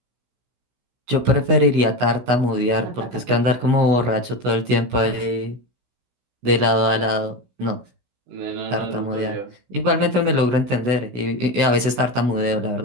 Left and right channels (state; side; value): late; left; 16 ms